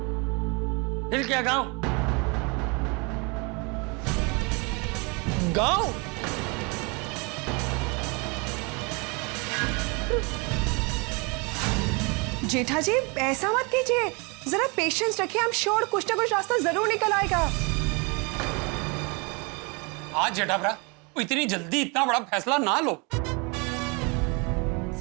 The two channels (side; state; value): left; quieter; 30.6 dB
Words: फिर क्या गाँव? गाँव? जेठा जी ऐसा मत कीजिए, जरा पेशेंस रखिए, हम श्योर कुछ ना कुछ रास्ता जरूर निकल आएगा। आज जेठाभरा इतनी जल्दी इतना बड़ा फैसला ना लो।